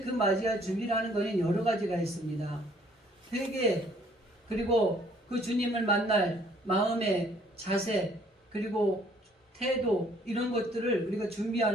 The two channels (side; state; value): both; normal; correlation 0.61